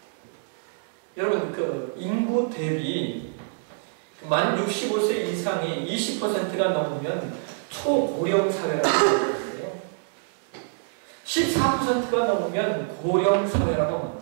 여러분, 그 인구 대비 만 65세 이상이 20%가 넘으면 초고령 사회라고 말하는데요. 14%가 넘으면 고령 사회라고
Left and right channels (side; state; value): left; silent; digital silence